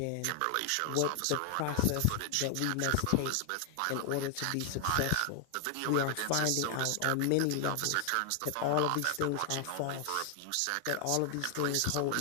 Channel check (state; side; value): different; both; correlation 0.00